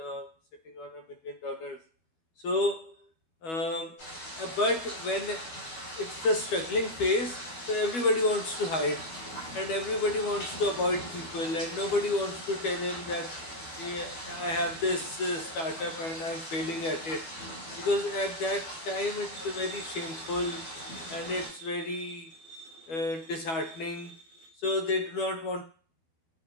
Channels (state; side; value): late; right; 12 ms